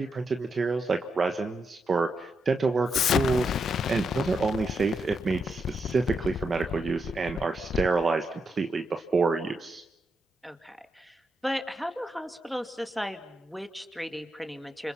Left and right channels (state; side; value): normal; both; correlation 0.82